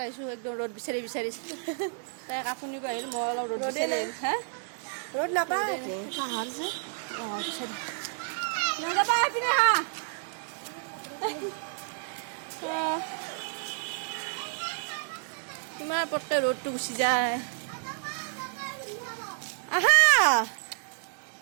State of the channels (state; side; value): silent; left; 58 dB below the other